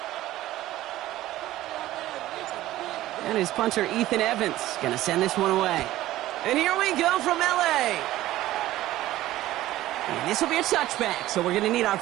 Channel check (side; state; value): left; quieter; 15.3 dB